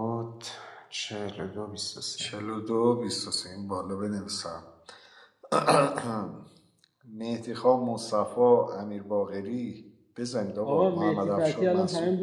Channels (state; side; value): identical; both; correlation 1.00